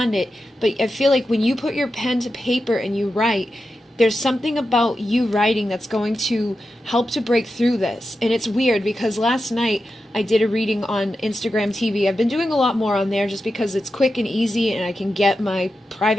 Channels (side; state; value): both; normal; correlation 0.90